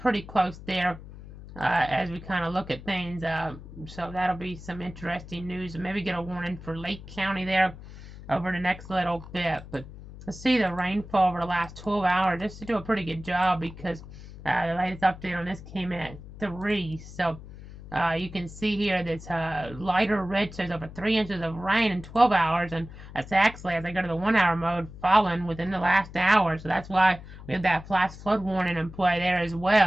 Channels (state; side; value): noise; left; hum, 15 dB below the sound